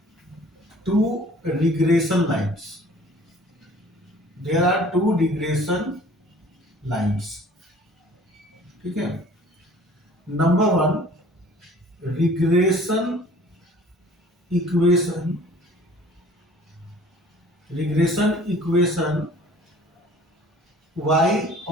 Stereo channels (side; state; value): both; normal; correlation 0.50